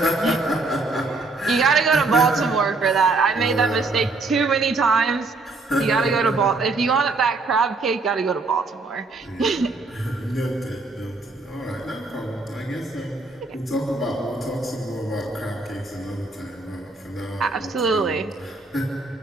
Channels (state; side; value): quieter; left; 3.5 dB